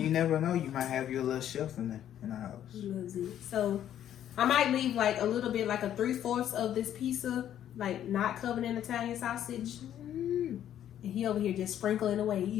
you never know. You might have your little chef in the house. So I might leave like a little bit, like a 3/4 of this pizza, like not covered in Italian sausage. And he over here just sprinkling away,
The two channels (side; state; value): right; quieter; 10.8 dB